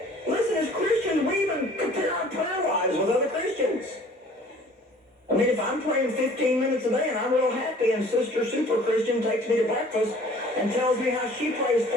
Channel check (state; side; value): normal; both; correlation 0.51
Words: Listen, as Christians, we even compare our prayer lives with other Christians. I mean, if I'm praying 15 minutes a day and I'm real happy and Sister Super Christian takes me to breakfast and tells me how she prays